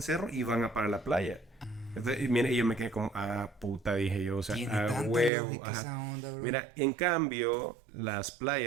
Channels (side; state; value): left; drops out; at 5.3 s